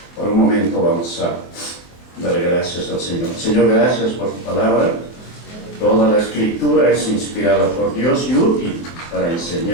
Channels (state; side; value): late; right; 23 ms